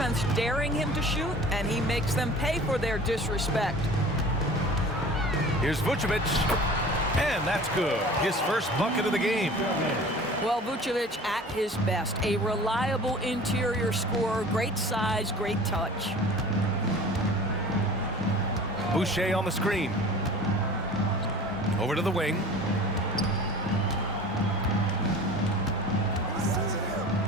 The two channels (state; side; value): normal; both; correlation 0.42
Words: daring him to shoot, and he makes them pay for their disrespect. Here's Vucevic, and that's good. His first bucket of the game. Well, Vucevic at his best. A reliable interior scorer, great size, great touch. Boucher on the screen. Over to the wing.